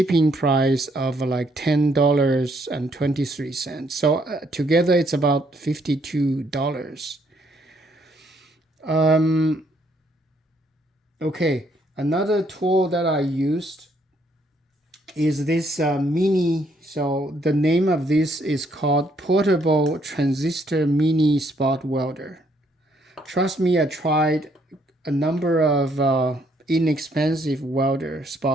price of like $10.23. So together it's about $52. Okay, another tool that I used is this mini. So the name of this is called Portable Transistor Mini Spot Welder. Trust me, I tried a number of inexpensive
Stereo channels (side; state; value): both; normal; correlation 0.70